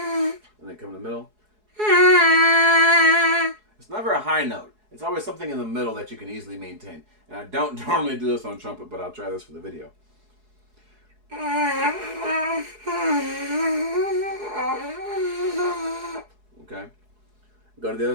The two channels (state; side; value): late; left; 4.7 ms